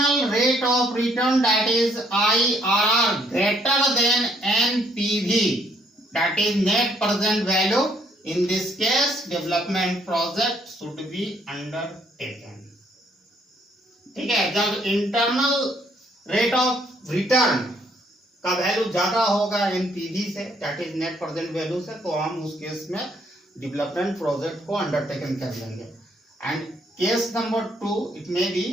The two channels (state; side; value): normal; both; correlation 0.68